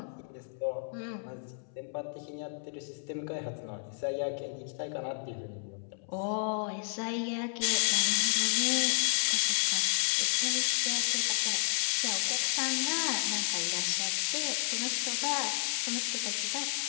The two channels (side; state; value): right; silent; 57 dB below the other